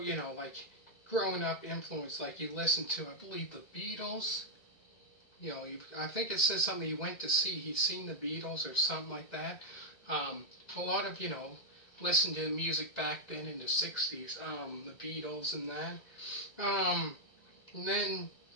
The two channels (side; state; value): right; late; 2.0 ms